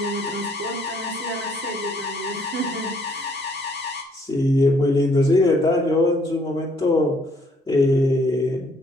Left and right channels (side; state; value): both; normal; correlation 0.66